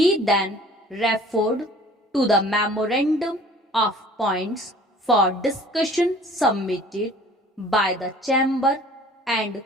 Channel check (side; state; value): both; normal; correlation 0.50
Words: then referred to the memorandum of points for discussion submitted by the chamber and